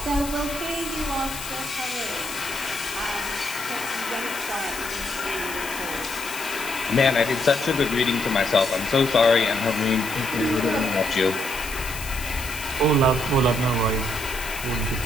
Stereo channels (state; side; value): noise; left; hiss, 10 dB below the sound